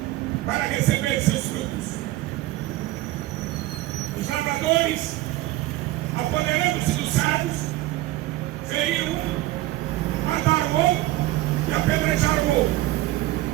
para receber seus frutos. Os lavradores, apoderando-se dos servos, feriram um, mataram o outro e apedrejaram o outro.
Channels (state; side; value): quieter; left; 16.7 dB